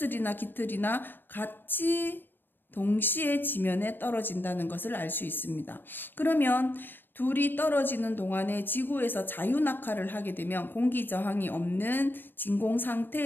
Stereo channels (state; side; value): late; right; 0.095 ms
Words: 깃털이나 같이 동시에 지면에 떨어진다는 것을 알 수 있습니다. 그러면 둘이 떨어지는 동안에 지구에서 자유낙하를 하게 되면, 공기 저항이 없는 진공